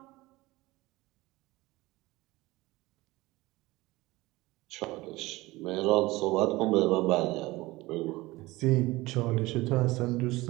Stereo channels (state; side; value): quieter; left; 20.2 dB